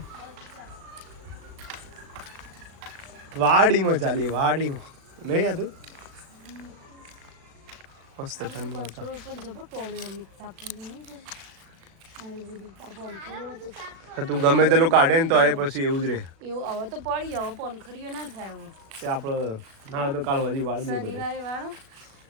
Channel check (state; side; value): late; left; 36 ms